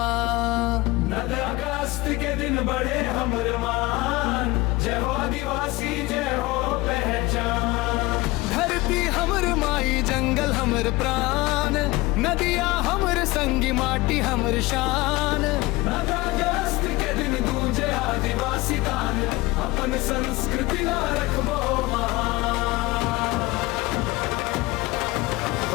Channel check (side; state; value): right; quieter; 21.1 dB